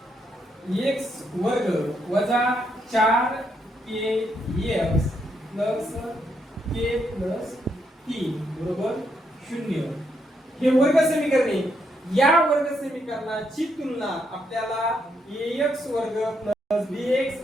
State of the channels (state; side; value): normal; both; correlation 0.77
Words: वर्ग वजा 4kx प्लस k प्लस 3 बरोबर 0 हे वर्ग समीकरण आहे. या वर्ग समीकरणाची तुलना आपल्याला ax वर्ग प्लस bx